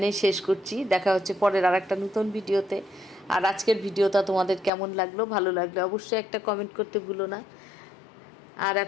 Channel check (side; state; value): right; drops out; at 4.7 s